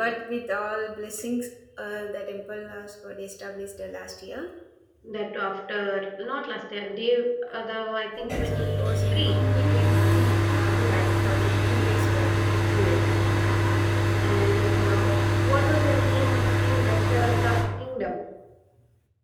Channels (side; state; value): both; identical; correlation 1.00